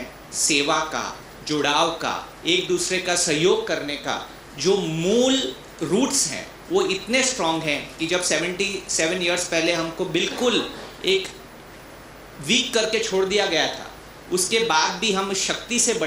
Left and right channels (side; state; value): both; identical; correlation 1.00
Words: सेवा का, जुड़ाव का, एक दूसरे का सहयोग करने का जो मूल रूट्स हैं वो इतने स्ट्रॉन्ग हैं कि जब 77 इयर्स पहले हमको बिल्कुल एक वीक करके छोड़ दिया गया था, उसके बाद भी हम शक्ति से